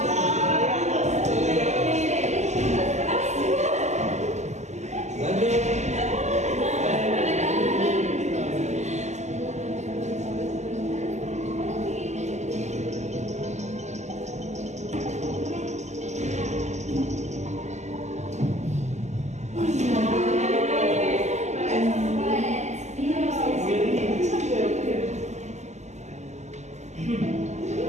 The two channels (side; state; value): left; late; 0.33 ms